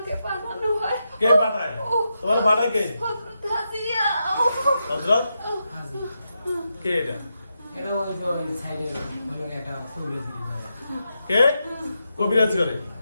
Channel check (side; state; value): both; inverted; correlation -0.86